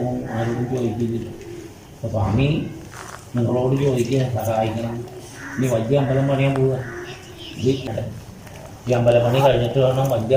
ആരോടും ചോദിക്കില്ല. അപ്പോൾ സ്വാമി നിങ്ങളോട് ചോദിക്കുക, സഹായിക്കണം. ഇനി വലിയ അമ്പലം പണിയാൻ പോവുക. ഈ അമ്പലപ്പണി കഴിഞ്ഞിട്ട് വേണം വലിയ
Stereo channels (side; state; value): both; identical; correlation 1.00